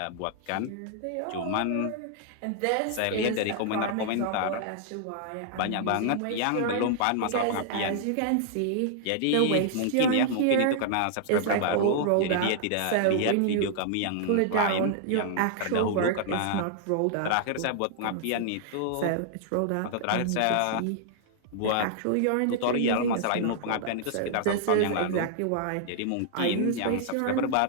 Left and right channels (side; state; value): both; different; correlation -0.01